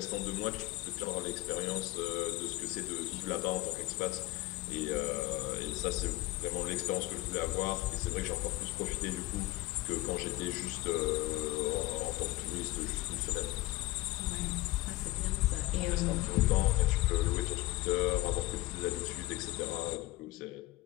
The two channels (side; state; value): right; quieter; 18.7 dB